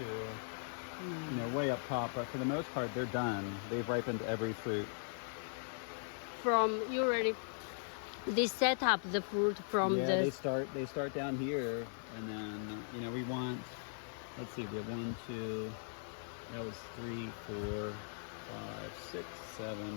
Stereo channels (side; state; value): right; silent; digital silence